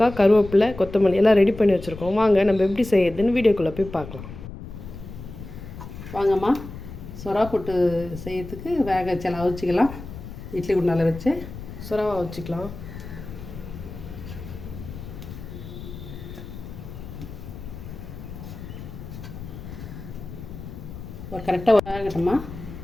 கருவேப்பிலை, கொத்தமல்லி எல்லாம் ரெடி பண்ணி வச்சிருக்கோம். வாங்க நம்ம எப்படி செய்யறதுன்னு வீடியோக்குள்ள போய் பார்க்கலாம். வாங்கம்மா சொரா புட்டு செய்யறதுக்கு வேக வச்சு அவிச்சிக்கலாம். இட்லி குண்டால வச்சு சொராவை வச்சுக்கலாம். ஒரு கரெக்டாக வேகட்டம்மா.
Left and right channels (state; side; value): noise; left; rumble, 12 dB below the sound